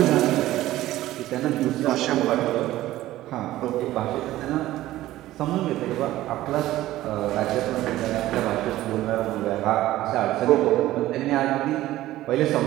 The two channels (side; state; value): left; quieter; 15.3 dB